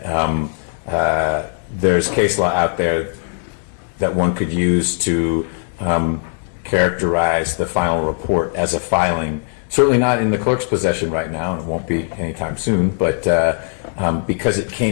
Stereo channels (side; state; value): right; silent; digital silence